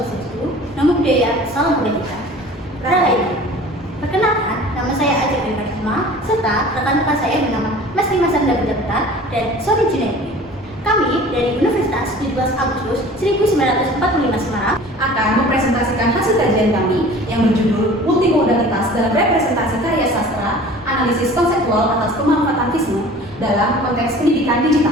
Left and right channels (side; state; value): both; normal; correlation 0.44